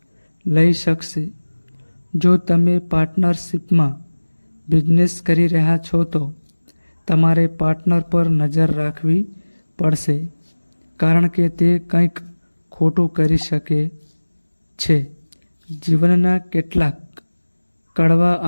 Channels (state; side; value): inverted; both; correlation -1.00